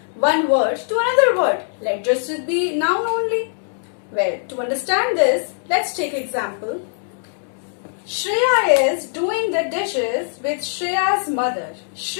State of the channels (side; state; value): right; silent; digital silence